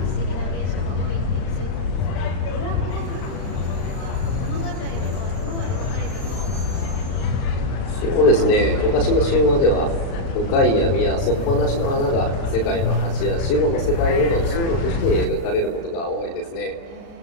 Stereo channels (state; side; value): late; right; 36 ms